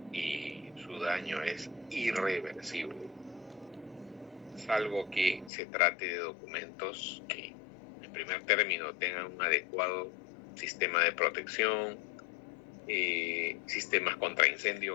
y su daño es irreversible, salvo que se trate de documentos que en primer término tengan un adecuado sistema de protección, sistemas contra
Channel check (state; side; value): drops out; right; at 5.5 s